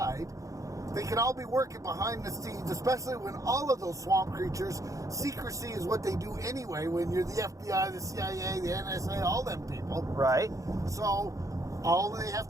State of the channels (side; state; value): left; late; 0.16 ms